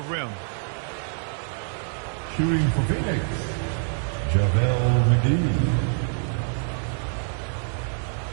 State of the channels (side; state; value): left; silent; 58 dB below the other